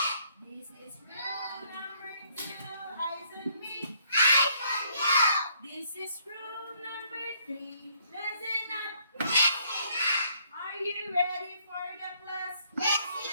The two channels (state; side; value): inverted; both; correlation -0.66